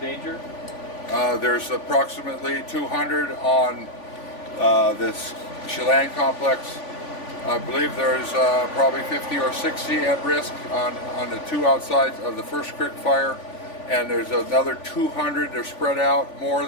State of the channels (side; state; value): right; late; 3.5 ms